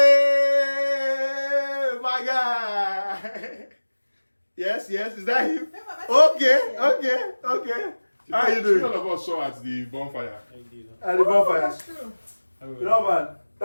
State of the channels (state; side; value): inverted; both; correlation -1.00